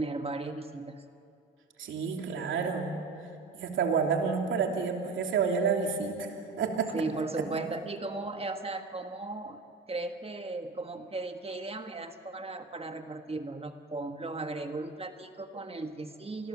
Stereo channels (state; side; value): quieter; left; 4.3 dB